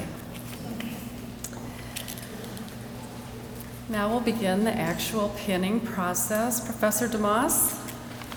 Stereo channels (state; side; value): identical; both; correlation 1.00